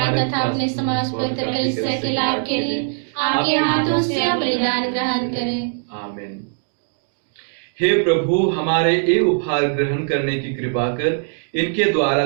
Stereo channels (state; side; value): silent; left; digital silence